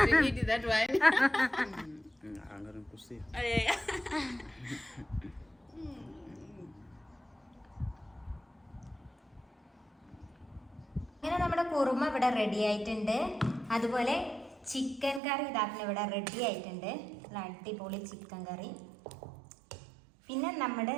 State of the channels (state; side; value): drops out; left; at 15.2 s